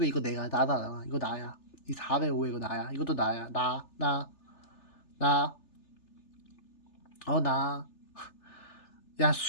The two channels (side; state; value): right; late; 3.3 ms